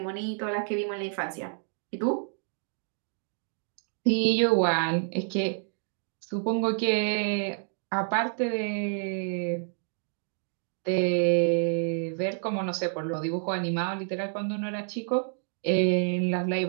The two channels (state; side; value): silent; left; 59 dB below the other